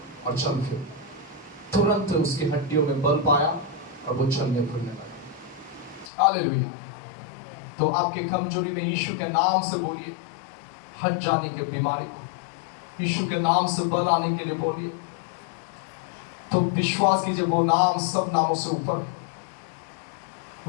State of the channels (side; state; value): right; drops out; at 6.1 s